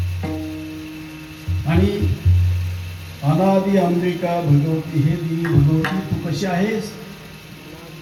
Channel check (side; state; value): both; identical; correlation 1.00